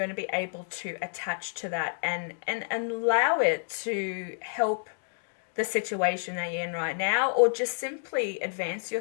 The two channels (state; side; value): silent; right; digital silence